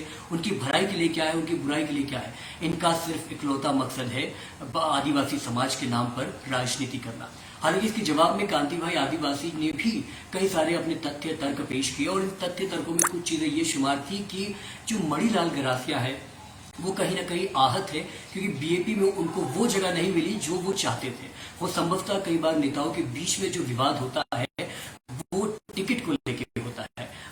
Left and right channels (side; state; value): both; identical; correlation 1.00